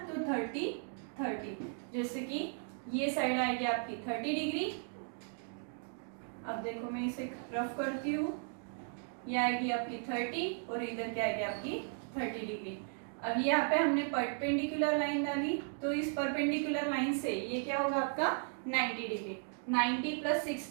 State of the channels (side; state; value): left; silent; 54 dB below the other